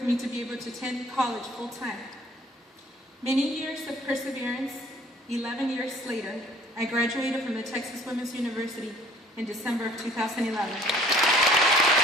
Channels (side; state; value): both; normal; correlation 0.54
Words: me to be able to attend college full-time. Many years of perseverance, 11 years later, I graduated from the Texas Women's University in December of 2011.